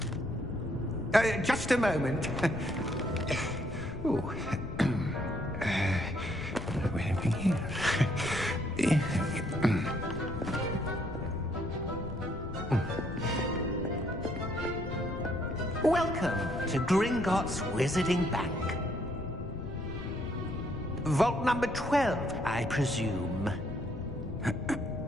Just a moment. Oh. Welcome to Gringotts Wizarding Bank. Vault number 12, I presume.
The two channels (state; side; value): noise; left; rumble, 11 dB below the sound